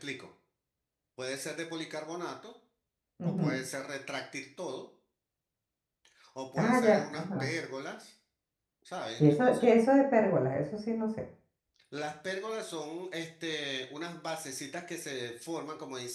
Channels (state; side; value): identical; both; correlation 1.00